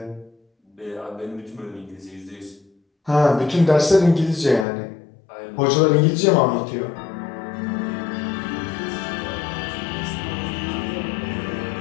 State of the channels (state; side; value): drops out; right; at 4.7 s